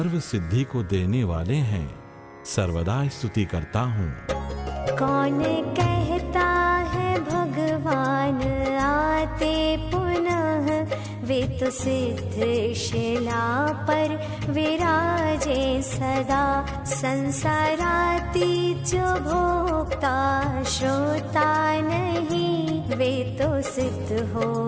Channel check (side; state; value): both; identical; correlation 1.00